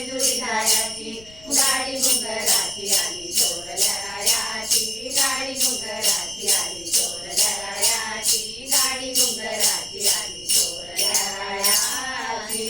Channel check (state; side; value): noise; left; rumble, 22 dB below the sound